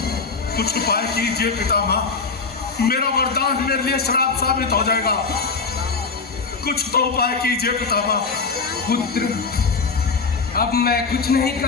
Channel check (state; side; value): quieter; right; 4.7 dB